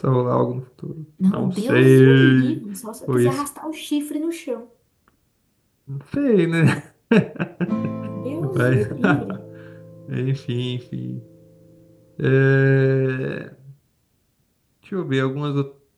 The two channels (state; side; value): identical; both; correlation 1.00